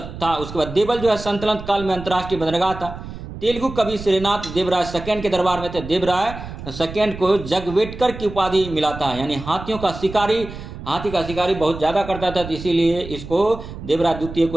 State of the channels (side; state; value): right; noise; rumble, 11 dB below the sound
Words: था। उसके बाद देवल जो है सल्तनत काल में अंतर्राष्ट्रीय बंदरगाह था। तेलुगु कवि श्रीनाथ देवराय सेकंड के दरबार में थे। देवराय सेकंड को जगवेटकर की उपाधि मिला था, यानी हाथी का शिकारी बहुत ज्यादा करता था, तो इसीलिए इसको देवराय द्वितीय